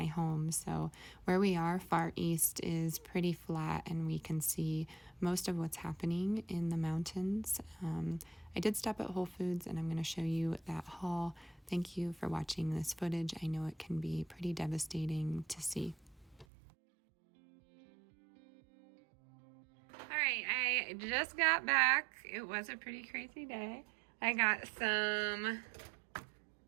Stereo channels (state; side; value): drops out; left; at 16.4 s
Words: home. So where we are, far east, is pretty flat, and we can see most of what's happening in the mountains. I did stop at Whole Foods, and I'm going to show you that haul. Thank you for watching this footage. I know it can be pretty devastating to see. All right, I just got back. It was a pretty crazy day. I got some